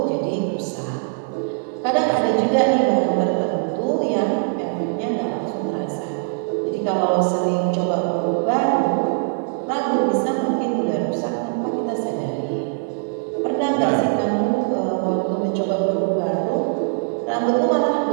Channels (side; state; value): left; silent; digital silence